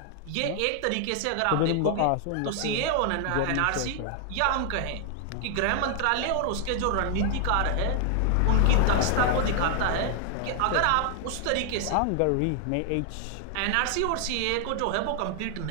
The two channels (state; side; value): different; both; correlation 0.00